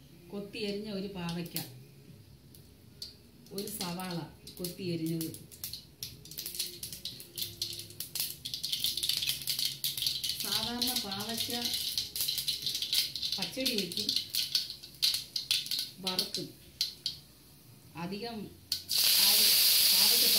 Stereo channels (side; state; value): both; identical; correlation 1.00